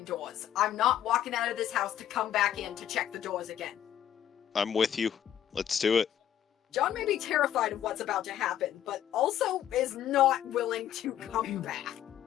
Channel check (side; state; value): right; quieter; 10.7 dB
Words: doors. I'm not walking out of this house to come back in to check the doors again. I'm with you. Let's do it. John may be terrified of what's about to happen, but also is not willing to come back.